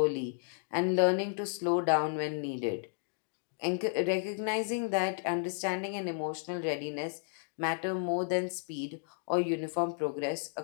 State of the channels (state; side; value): silent; right; digital silence